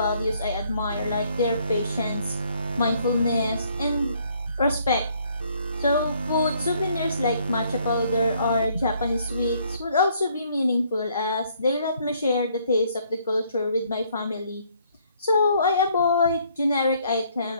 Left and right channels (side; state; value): both; inverted; correlation -0.66